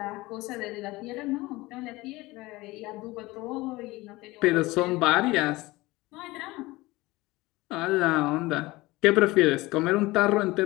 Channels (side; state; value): right; quieter; 20.4 dB